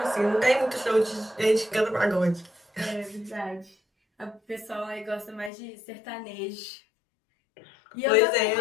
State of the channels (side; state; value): right; drops out; at 5.5 s